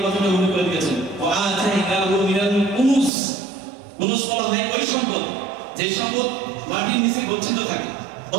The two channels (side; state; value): left; drops out; at 3.1 s